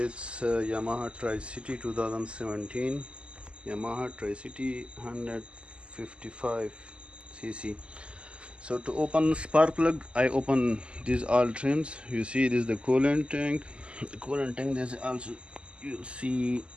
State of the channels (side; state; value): left; late; 0.053 ms